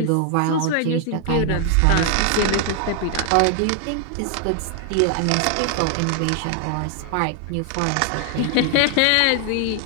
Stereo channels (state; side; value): different; both; correlation 0.00